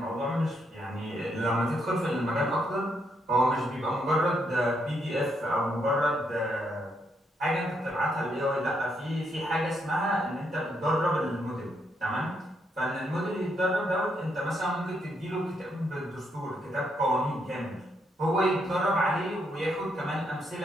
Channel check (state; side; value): normal; both; correlation 0.77